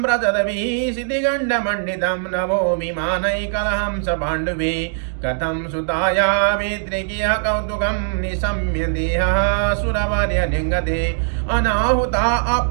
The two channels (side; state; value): left; silent; digital silence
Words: व्रजदभिषितिगण्डमण्डितं नवोऽमि मानैकलहं स पाण्डवे कथं सुताया वेत्रिकीयः कौतुकं निशम्य देहः सुरवर्यनिङ्गते अनाहुता